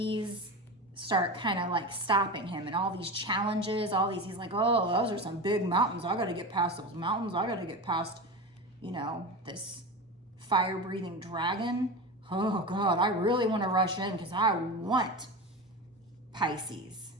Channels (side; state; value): both; normal; correlation 0.25